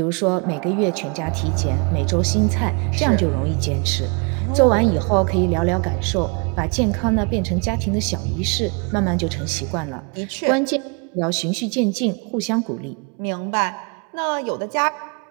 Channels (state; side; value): quieter; left; 34.5 dB